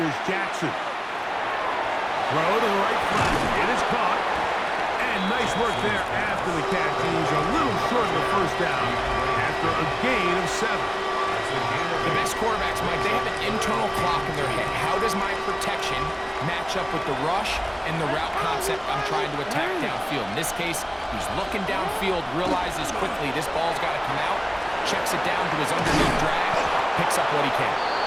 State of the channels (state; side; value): identical; both; correlation 1.00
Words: Jackson. Throw to the right flat. It is caught. And nice work there after the catch. He's a little short of the first down after a gain of 7. The best quarterbacks, Mike, they have an internal clock in their head. How does my protection match up with the rush and the route concept I'm trying to attack downfield? In this case, he's looking downfield, realizes quickly this ball's got to come out, checks it down to his underneath drag, picks up what he can.